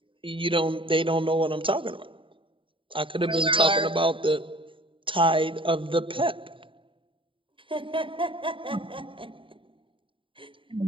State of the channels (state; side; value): late; left; 0.25 ms